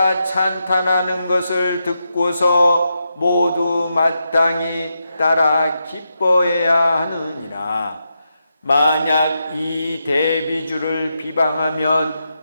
찬탄하는 것을 듣고서 모두 마땅히 따라 기뻐해야 하느니라. 만약 이 대비주를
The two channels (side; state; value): both; inverted; correlation -0.85